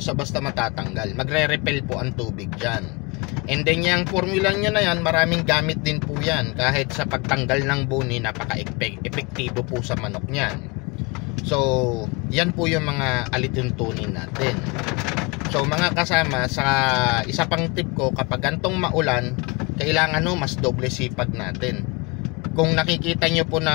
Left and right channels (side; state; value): right; quieter; 27.9 dB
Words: matatanggal. Magre-repel po ang tubig dyan. And then yung formula nyo na yan, maraming gamit din po yan. Kahit sa pagtanggal ng buni, napaka-epektibo po sa manok nyan. So, yan po yung mga alituntunin natin. So, mga kasama, sa isa pang tip ko, kapag gantong maulan, kailangan mas doble sipag natin. Kung nakikita nyo po